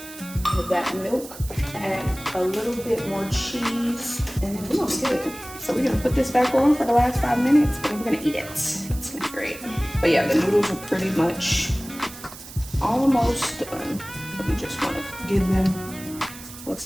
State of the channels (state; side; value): noise; right; hiss, 15 dB below the sound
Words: of that milk. Add a little bit more cheese, and then we're gonna be good. So we're gonna put this back on for the last 5 minutes, and we're gonna eat it. It's gonna be great. But yeah, the noodles are pretty much almost done. We just wanna give them, looks